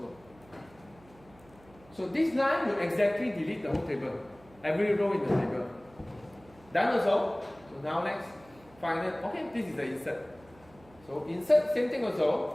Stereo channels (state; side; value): noise; right; hum, 26 dB below the sound